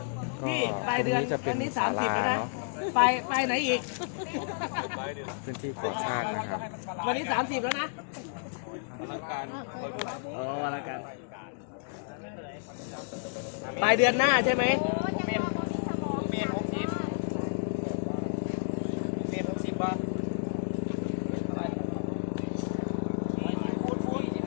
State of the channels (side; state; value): right; silent; digital silence